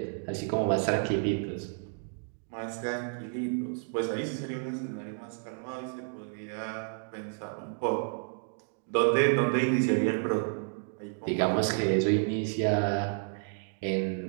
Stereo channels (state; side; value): silent; left; 57 dB below the other